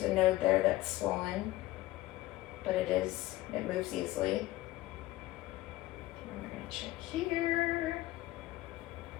a node there that's swollen, but it moves easily. And we're going to check here.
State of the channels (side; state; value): right; quieter; 17.2 dB